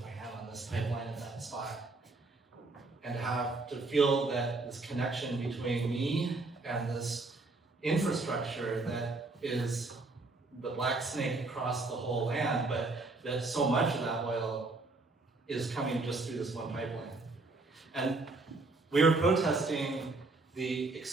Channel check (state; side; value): quieter; left; 3.4 dB